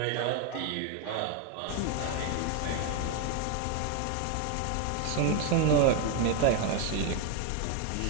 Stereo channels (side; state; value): both; different; correlation 0.01